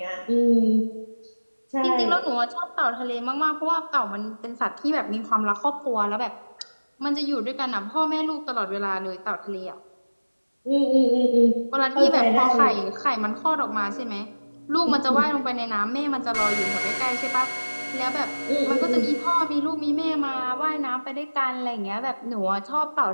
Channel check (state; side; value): inverted; both; correlation -1.00